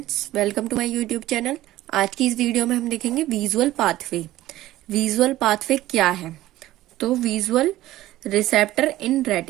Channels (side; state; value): left; quieter; 15.5 dB